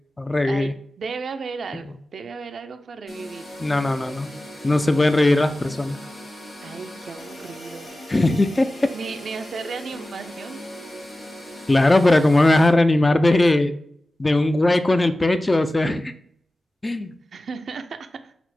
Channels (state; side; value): normal; both; correlation 0.96